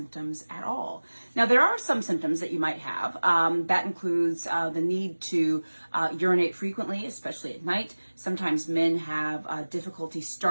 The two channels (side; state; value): both; inverted; correlation -1.00